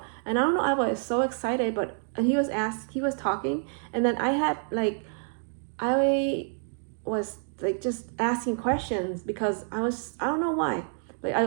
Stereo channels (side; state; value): left; silent; 59 dB below the other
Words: And I don't know, I was so excited, and he was talking, and then I was like just asking questions, because I don't know why, like